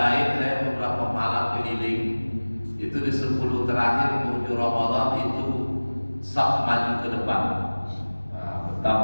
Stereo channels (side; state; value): both; inverted; correlation -1.00